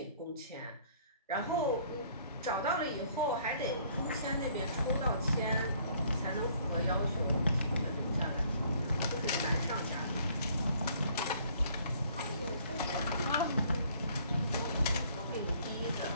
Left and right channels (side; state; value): both; inverted; correlation -0.60